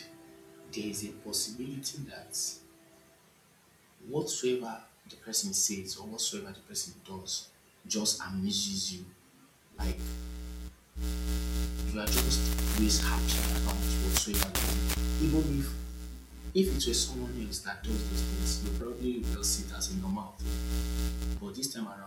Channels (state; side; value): identical; both; correlation 1.00